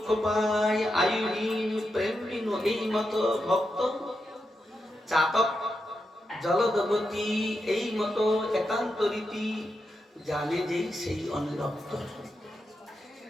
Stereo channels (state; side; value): normal; both; correlation 0.86